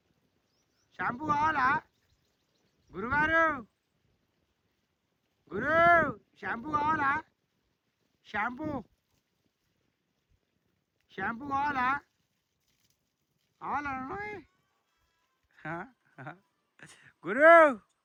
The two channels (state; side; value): identical; both; correlation 1.00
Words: షాంపూ కావాలా గురుగారు గురు షాంపూ కావాలా షాంపూ కావాలా గురు